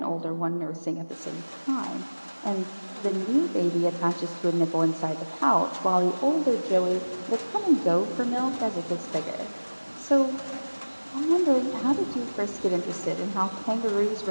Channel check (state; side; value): inverted; both; correlation -1.00